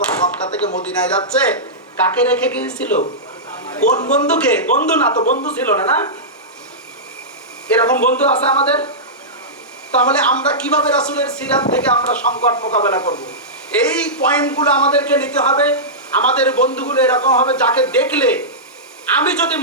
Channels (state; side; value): normal; both; correlation -0.14